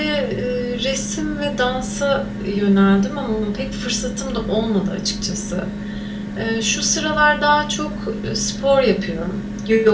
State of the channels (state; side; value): identical; both; correlation 1.00